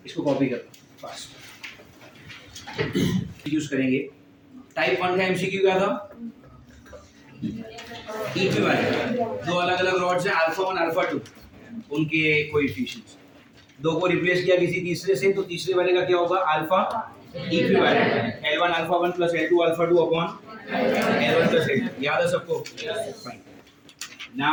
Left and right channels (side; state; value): both; identical; correlation 1.00